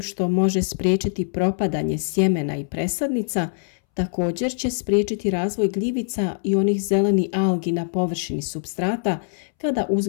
može spriječiti propadanje sjemena i presadnica, također će spriječiti razvoj gljivica i onih zelenih algi na površini supstrata kada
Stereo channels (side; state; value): right; silent; 63 dB below the other